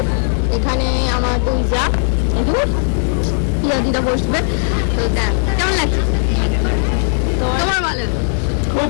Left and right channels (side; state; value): right; silent; digital silence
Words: এখানে আমার দুই যা, এখানে পিয়াদিরা বসবে। তো দেখ কেমন লাগছে? তোমার ভালো? খুব